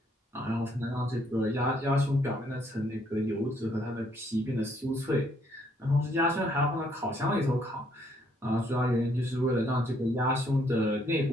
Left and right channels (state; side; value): normal; both; correlation 0.69